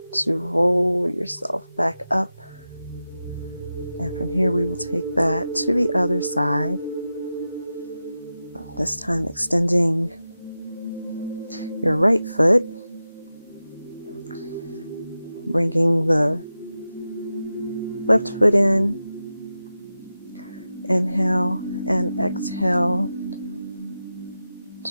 to roll yourself back up. And from here, we will take that to the other side. This time extending your right foot, bringing the left foot in, inhale and exhale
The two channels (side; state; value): both; inverted; correlation -0.92